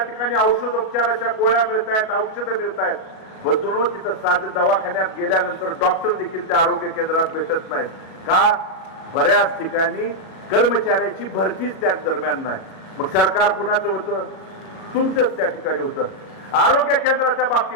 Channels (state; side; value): late; right; 37 ms